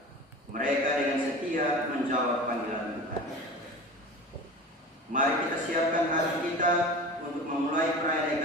Mereka dengan setia menjawab panggilan Tuhan. Mari kita siapkan hati kita untuk memulai perayaan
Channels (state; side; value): normal; both; correlation 0.35